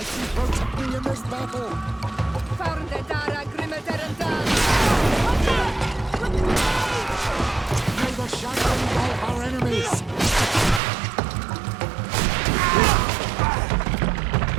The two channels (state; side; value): drops out; left; at 10.8 s